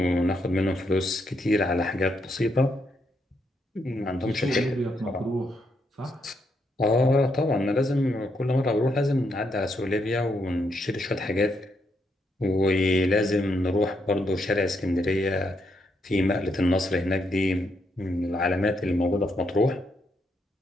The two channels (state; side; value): normal; both; correlation 0.78